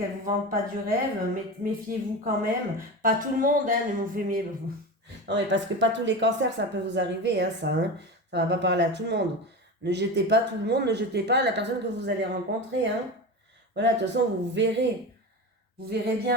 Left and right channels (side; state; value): both; normal; correlation 0.25